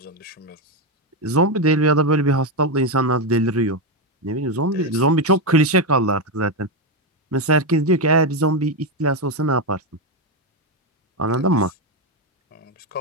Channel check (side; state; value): both; normal; correlation 0.08